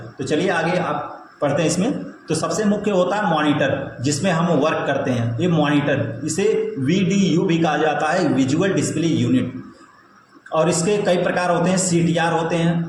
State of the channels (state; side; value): identical; both; correlation 1.00